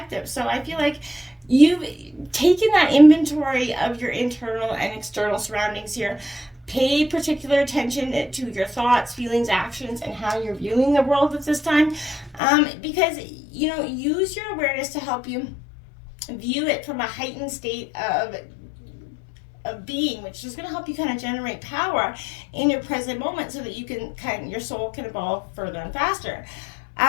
So I feel like you've taking that inventory of your internal and external surroundings here. Pay particular attention to your thoughts, feelings, actions, and how you're viewing the world at this time. Because, use your awareness to help you view it from a heightened state of being, which is going to help you kind of generate power in your present moment so that you can your soul can evolve further and faster.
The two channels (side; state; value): right; drops out; at 12.4 s